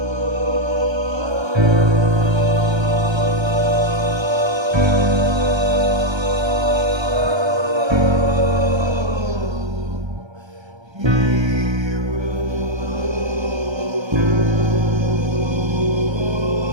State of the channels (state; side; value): late; left; 1.3 ms